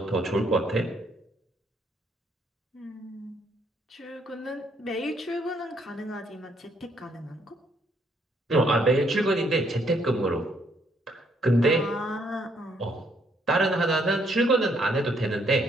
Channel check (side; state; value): both; normal; correlation 0.70